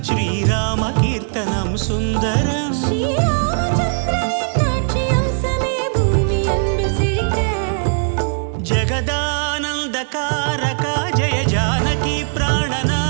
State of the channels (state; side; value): silent; left; digital silence